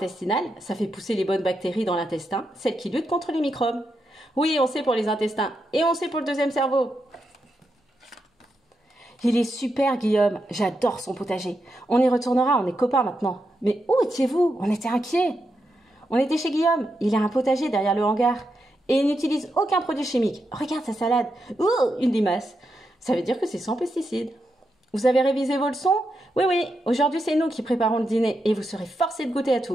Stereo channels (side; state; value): both; normal; correlation 0.85